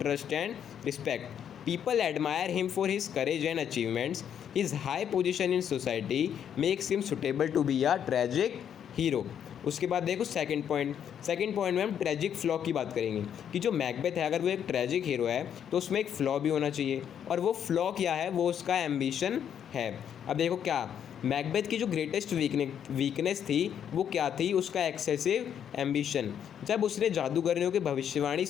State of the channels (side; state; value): right; quieter; 8.9 dB